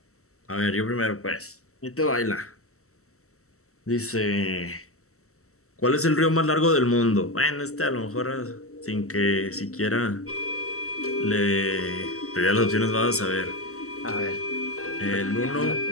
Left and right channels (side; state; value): right; late; 0.63 ms